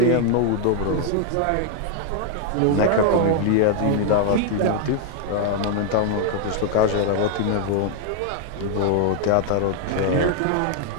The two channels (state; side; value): different; both; correlation 0.00